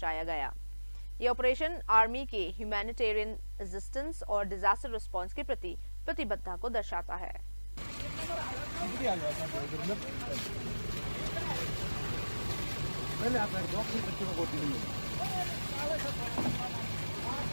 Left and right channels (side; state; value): both; inverted; correlation -1.00